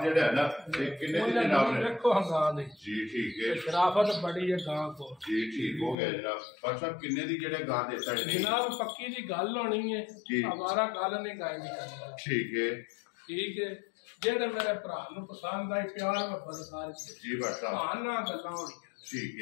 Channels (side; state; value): right; drops out; at 6.0 s